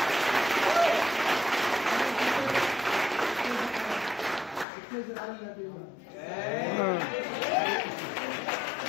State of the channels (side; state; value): right; drops out; at 4.7 s